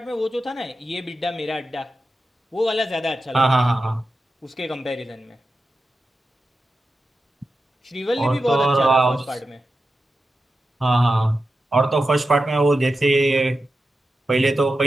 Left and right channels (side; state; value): both; normal; correlation 0.91